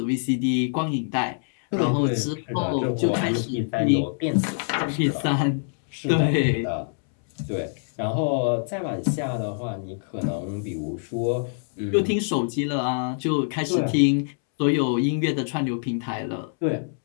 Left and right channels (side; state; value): right; silent; 62 dB below the other